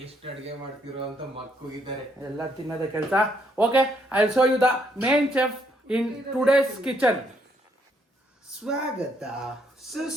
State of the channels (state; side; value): normal; both; correlation 0.72